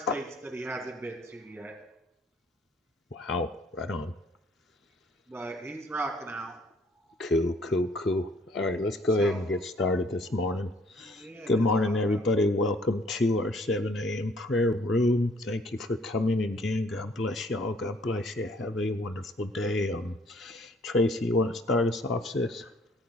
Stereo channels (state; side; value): normal; both; correlation 0.61